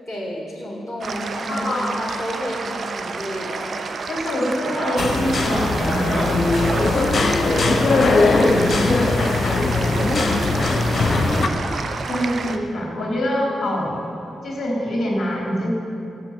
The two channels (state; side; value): normal; both; correlation 0.86